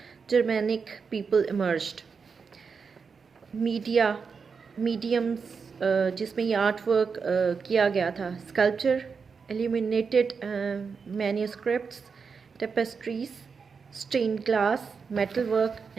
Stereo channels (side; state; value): left; quieter; 5.5 dB